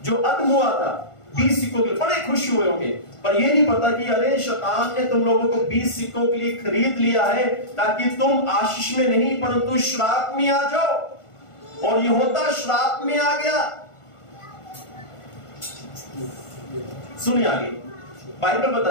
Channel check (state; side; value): late; right; 1.5 ms